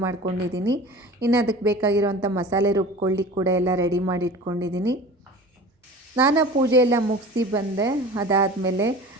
ಮಾಡ್ಕೊಂಡಿದ್ದೀನಿ. ಇನ್ನು ಅದಕ್ಕೆ ಬೇಕಾಗಿರೋವಂಥ ಮಸಾಲೆ ರುಬ್ಕೊಳ್ಳಿಕ್ಕೆ ಕೂಡ ಎಲ್ಲ ರೆಡಿ ಮಾಡಿ ಇಟ್ಕೊಂಡಿದ್ದೀನಿ. ಸ್ನಾನ ಪೂಜೆ ಎಲ್ಲ ಮುಗಿಸಿ ಬಂದೆ. ಅದಾದಮೇಲೆ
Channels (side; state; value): both; normal; correlation 0.38